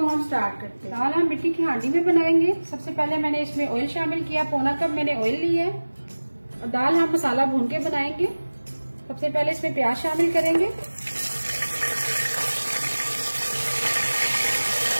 हम स्टार्ट करते हैं। दाल हम मिट्टी की हांडी में बनाएंगे। सबसे पहले मैंने इसमें ऑयल शामिल किया, पौना कप मैंने ऑयल ली है। और दाल हम मसाला भून के बनाएंगे। सबसे पहले इसमें प्याज शामिल करेंगे,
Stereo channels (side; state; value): both; inverted; correlation -1.00